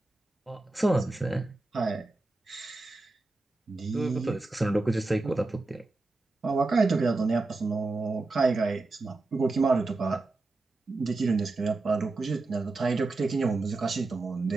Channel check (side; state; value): left; quieter; 3.3 dB